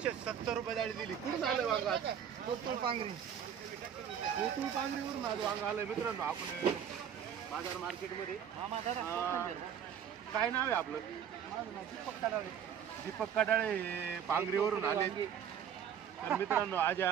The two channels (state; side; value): quieter; left; 8.6 dB